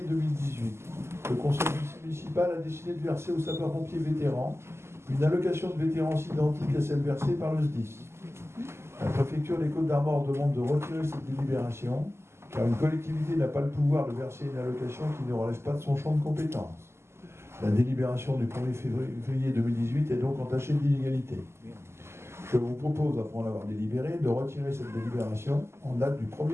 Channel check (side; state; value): left; late; 0.13 ms